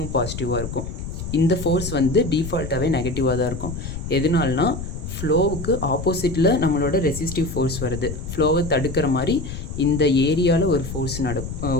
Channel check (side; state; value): left; noise; rumble, 7 dB below the sound